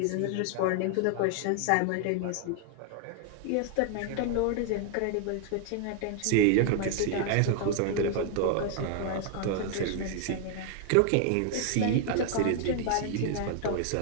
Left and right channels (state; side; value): different; both; correlation 0.00